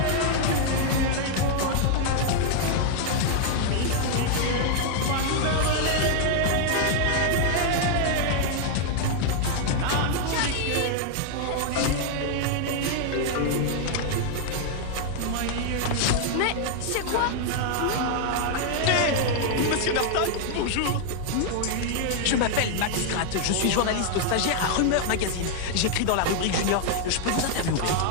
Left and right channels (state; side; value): different; both; correlation 0.00